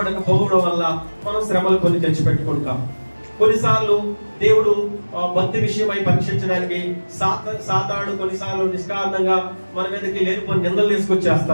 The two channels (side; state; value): both; inverted; correlation -1.00